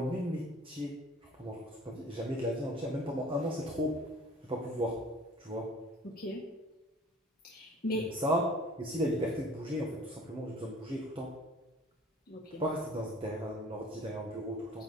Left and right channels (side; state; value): both; normal; correlation 0.49